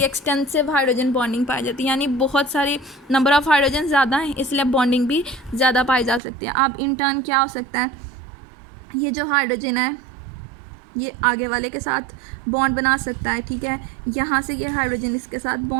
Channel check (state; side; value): drops out; left; at 6.2 s